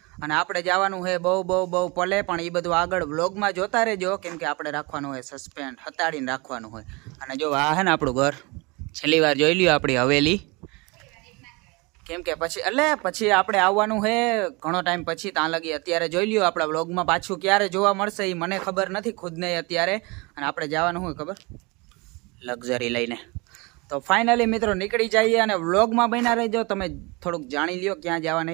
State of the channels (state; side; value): quieter; left; 26.8 dB